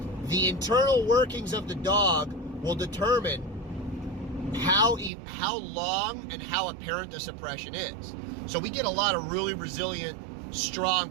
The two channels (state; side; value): drops out; left; at 5.1 s